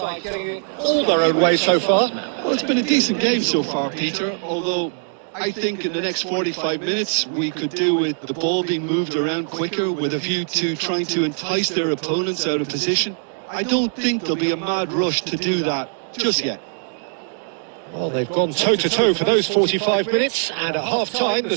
getting it All their own way so far. Well, it's been a decent game so far, Peter, although I think in the next 45 minutes we could do with the ball being moved around quicker with a view to trying to entice their opponents out of position. I don't think there'll be a mad rush to do that just yet. Well, they've gone toe-to-toe for those 45 minutes, and at half-time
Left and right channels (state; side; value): silent; left; 58 dB below the other